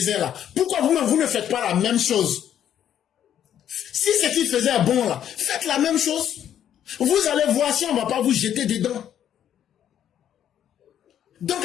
là. Pourquoi vous ne faites pas la même chose? Si ce qu'il faisait est bon là, faites la même chose. Vous allez voir si on ne va pas vous jeter dedans.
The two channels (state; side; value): quieter; right; 10.1 dB